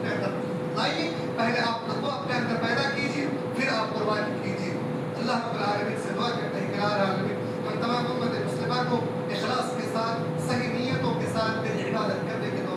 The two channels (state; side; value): identical; both; correlation 1.00